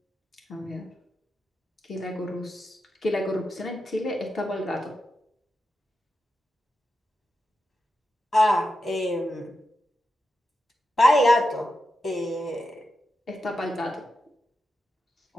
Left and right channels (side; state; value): both; normal; correlation 0.89